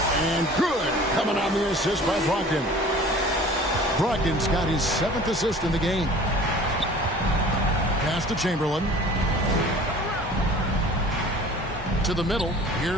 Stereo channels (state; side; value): normal; both; correlation 0.45